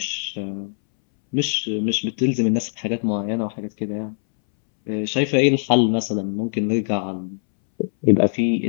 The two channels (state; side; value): silent; right; 63 dB below the other